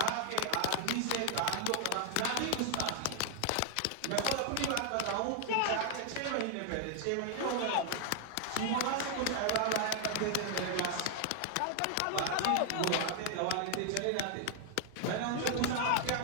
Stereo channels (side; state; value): both; different; correlation 0.00